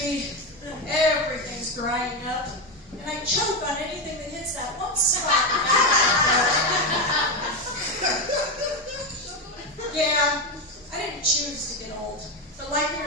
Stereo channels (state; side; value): normal; both; correlation 0.12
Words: be. Everything's drying up. And I choke on anything that hits that one spot. Yeah, I didn't choose to get old. But like it